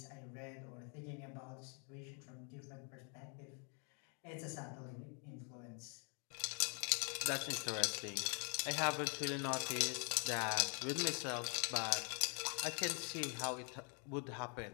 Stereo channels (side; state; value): right; quieter; 39.3 dB